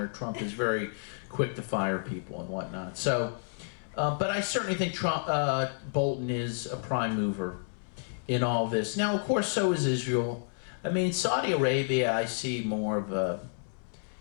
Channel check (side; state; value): right; silent; 57 dB below the other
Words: Trump is very quick to fire people and whatnot. So, but I certainly think Bolton is a prime mover in all this. Now, of course, so is Israel. I mean, Saudi Arabia, I see more of a